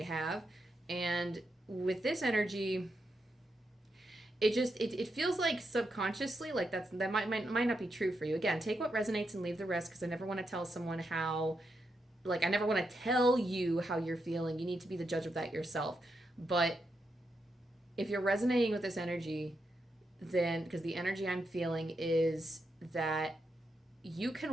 have. And with this energy, it feels like subconsciously, like that might not be true for you. Again, take what resonates and leave the rest, because I never want to tell someone how, like, I never want to tell you how you're feeling. You need to be the judge of that yourself. But if you're resonating with this energy, then, because the energy I'm feeling is that you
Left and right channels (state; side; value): normal; both; correlation 0.84